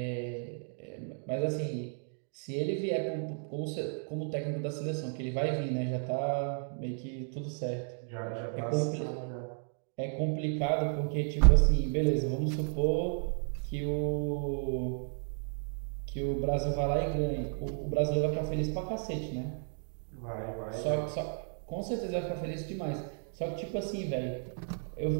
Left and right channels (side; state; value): left; silent; 55 dB below the other